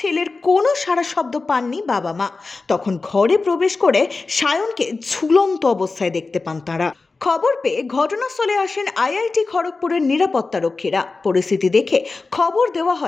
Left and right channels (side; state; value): right; quieter; 3.9 dB